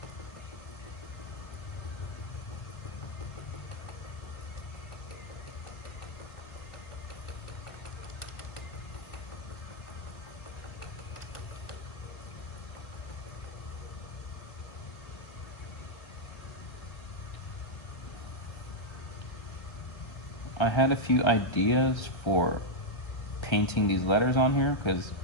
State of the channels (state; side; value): late; right; 1.3 ms